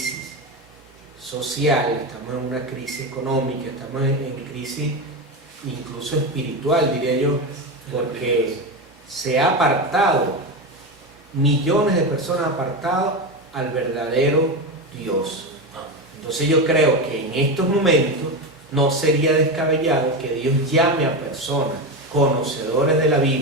social, estamos en una crisis económica, estamos en crisis incluso espiritual, diría yo, porque se ha apartado, millones de personas apartado al verdadero Dios. Entonces yo creo que en estos momentos no sería descabellado que Dios llame a personas conocedores de la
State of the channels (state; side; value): normal; both; correlation 0.17